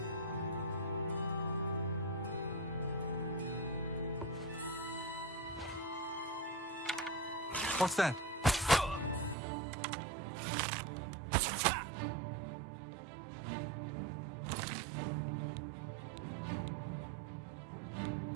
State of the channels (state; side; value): drops out; left; at 9.3 s